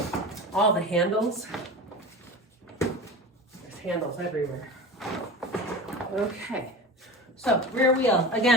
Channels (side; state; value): both; normal; correlation 0.31